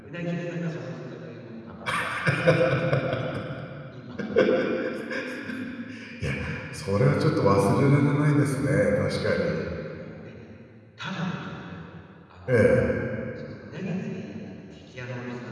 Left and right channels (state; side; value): identical; both; correlation 1.00